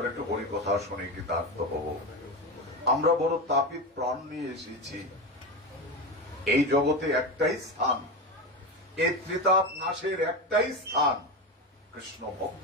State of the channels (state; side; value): normal; both; correlation 0.19